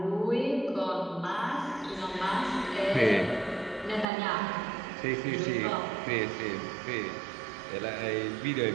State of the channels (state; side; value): drops out; left; at 4.0 s